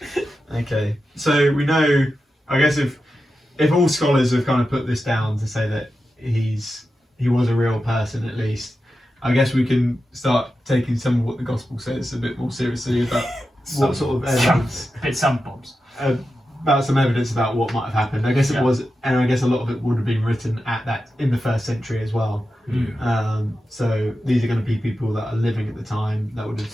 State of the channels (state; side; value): normal; both; correlation 0.91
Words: Okay, so we know, I guess if all scholars have kind of put this down to say that he was a real person at least, I guess we can start taking some of what the gospel says a bit more seriously about what sort of evidence. A bit some bombs. About some evidence about what might have happened. I guess it was, and I guess a lot of it would have been written in the 1st century as well. So these are going to be people that are living at the time that would have